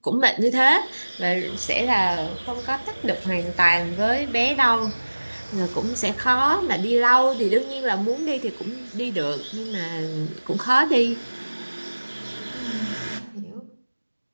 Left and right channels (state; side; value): inverted; both; correlation -1.00